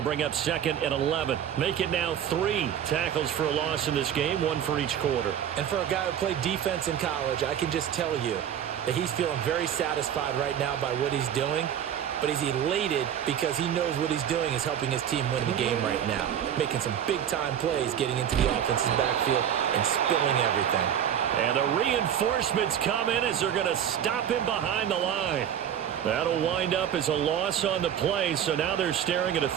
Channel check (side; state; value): left; quieter; 9.5 dB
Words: bring up 2nd and 11. Make it now 3 tackles for a loss in this game, 1 for each quarter. And for a guy who played defense in college, I can just tell you that he's feeling very satisfied right now by what he's doing. But he's elated because he knows what he's doing is helping his team win the game right now. Making some big-time plays, getting into the offense's backfield and spilling everything. And the reinforcements come in as they're going to stop him behind the line. That'll wind up as a loss on the play, so now they're staring at a